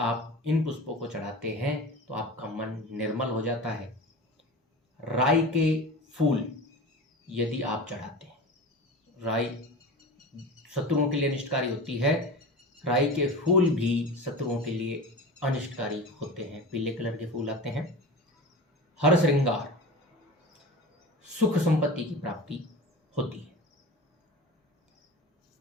इन पुष्पों को चढ़ाते हैं तो आपका मन निर्मल हो जाता है। राई के फूल यदि आप चढ़ाते हैं, राई शत्रुओं के लिए अनिष्टकारी होती है, राई के फूल भी शत्रुओं के लिए अनिष्टकारी होते हैं। पीले कलर के फूल आते हैं। हर श्रृंगार, सुख संपत्ति की प्राप्ति होती है।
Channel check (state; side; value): normal; both; correlation 0.32